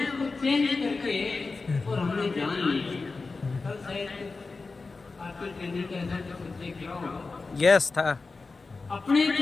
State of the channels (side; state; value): right; quieter; 4.0 dB